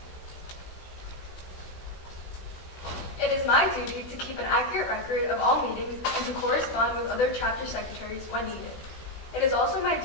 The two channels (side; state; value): right; late; 16 ms